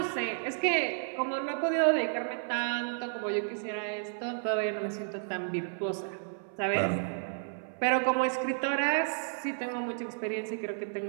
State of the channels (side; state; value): left; silent; 57 dB below the other